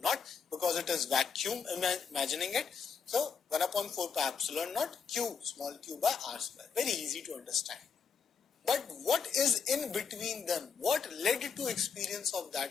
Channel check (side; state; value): right; quieter; 5.9 dB